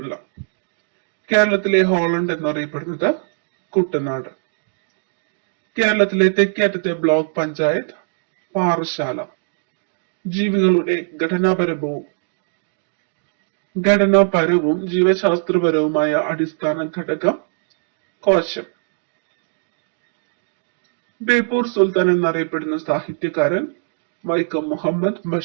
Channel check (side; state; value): left; silent; 65 dB below the other